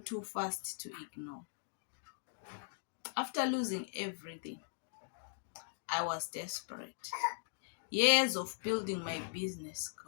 too fast to ignore. After losing everything, I was desperate. Years of building my business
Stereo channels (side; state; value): right; silent; digital silence